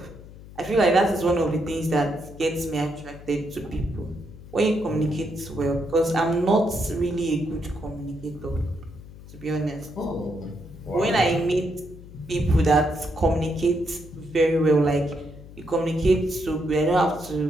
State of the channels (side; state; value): left; noise; hum, 17 dB below the sound